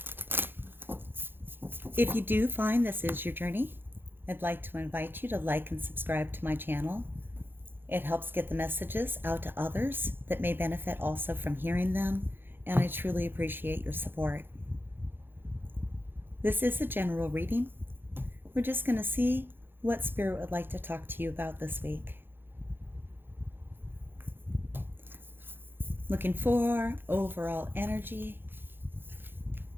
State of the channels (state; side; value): late; left; 0.10 ms